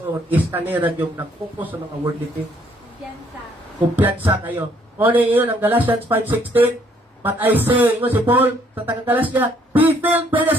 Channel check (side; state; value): both; normal; correlation 0.66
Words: is kanira yung nag-focus sa mga wordly things. Kumpiyansa kayo. O na yun, ang Galatians 5:16, but I say, ingo si Paul, sa taga-Galasya, be filled by the